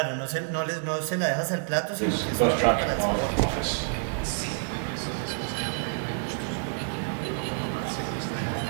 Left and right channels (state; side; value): silent; left; 59 dB below the other